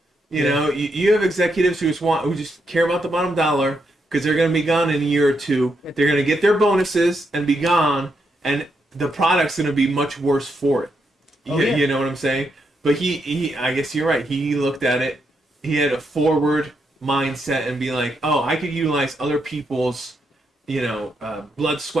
You have executives who just care about the bottom dollar because they're going to be gone in a year or two. They're going to get their bonuses and be gone, and the product's going to be much worse for it. Oh, yeah. You know what I'm saying? But I guess you're right. He looked at it. He had a forward mindset and be like, oh, I could utilize other people's, blood,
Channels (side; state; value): both; normal; correlation 0.80